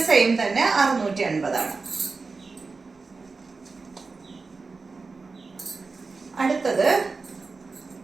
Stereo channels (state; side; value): quieter; left; 4.2 dB